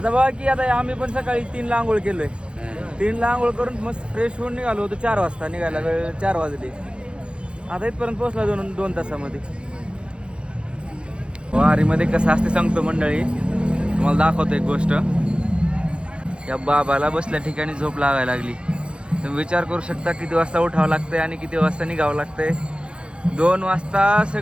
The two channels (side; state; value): left; late; 0.055 ms